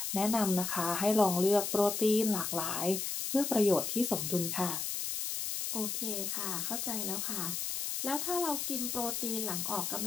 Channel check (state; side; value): noise; left; hiss, 2 dB below the sound